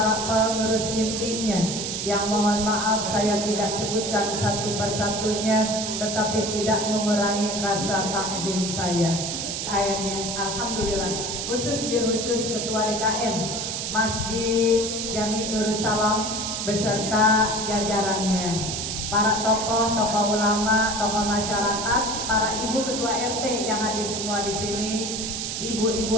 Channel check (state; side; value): noise; right; hiss, 3 dB below the sound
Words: pengurus intinya, yang mohon maaf saya tidak sebutkan satu persatunya, tetapi tidak mengurangi rasa takzim saya. Ayatnya alhamdulillah, khusus Ketua DKM Masjid Jami Nurus Salam beserta jajarannya, para tokoh ulama, tokoh masyarakat, para ibu ketua RT yang hadir semua di sini, ibu-ibu